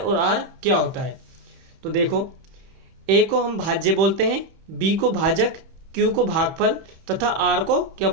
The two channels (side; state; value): left; late; 31 ms